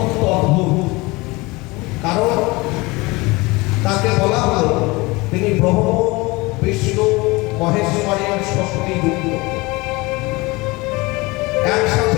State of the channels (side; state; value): right; quieter; 23.5 dB